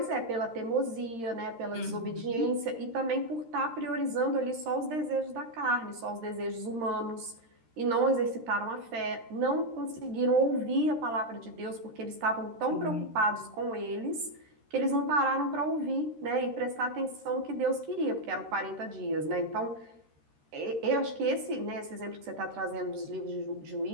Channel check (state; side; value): late; left; 13 ms